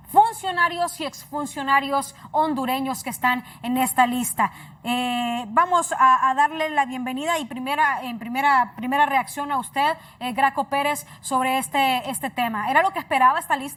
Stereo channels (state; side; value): identical; both; correlation 1.00